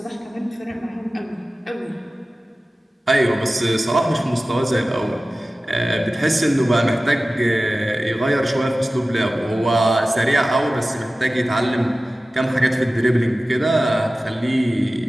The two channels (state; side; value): normal; both; correlation 0.96